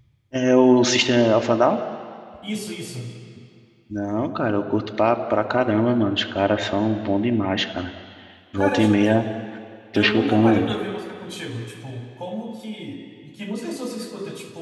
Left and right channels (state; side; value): identical; both; correlation 1.00